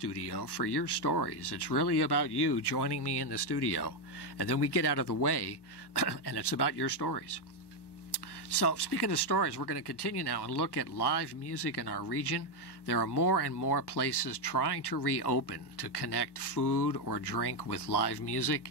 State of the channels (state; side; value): late; right; 1.2 ms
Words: for your stories. It's really about you joining me in the studio. And then we get out of the way, and it's about your stories. So speaking of stories, we're going to continue now and look at live music in our region. There are more and more places trying to reopen to connect food or drink with live music.